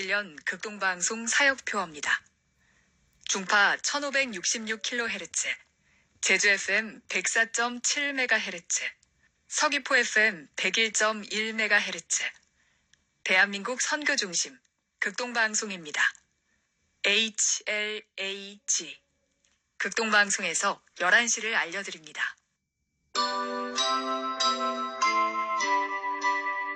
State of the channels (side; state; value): both; identical; correlation 1.00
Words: 극동방송 사역표어입니다. 중파 1566kHz, 제주 FM 104.7MHz, 서귀포 FM 101.1MHz, 대한민국 선교중심 극동방송입니다. HLAG 극동방송에서 11시를 알려드립니다.